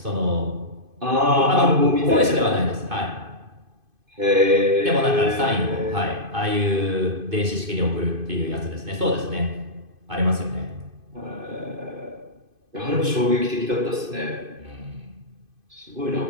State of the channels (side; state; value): left; late; 2.5 ms